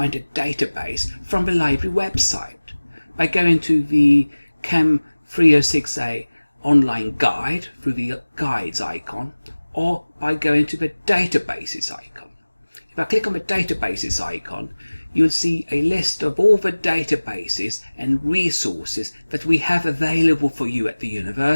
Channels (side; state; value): both; inverted; correlation -1.00